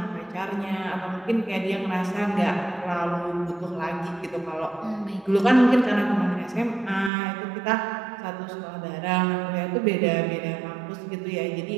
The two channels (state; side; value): drops out; left; at 7.1 s